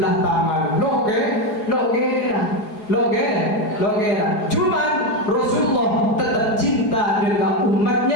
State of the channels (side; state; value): right; late; 4.8 ms